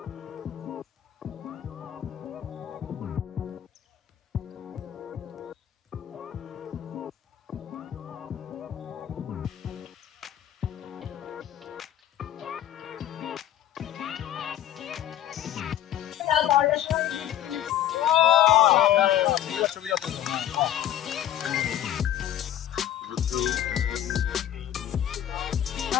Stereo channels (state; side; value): quieter; right; 11.6 dB